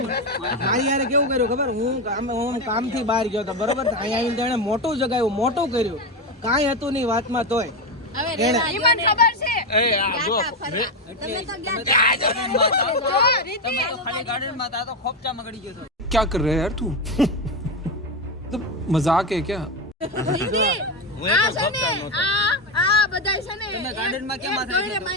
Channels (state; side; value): normal; both; correlation 0.12